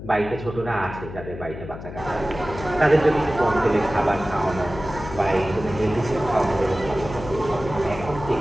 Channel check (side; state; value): left; noise; hum, 11 dB below the sound